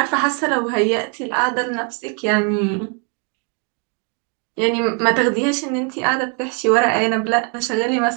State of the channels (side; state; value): left; quieter; 38.2 dB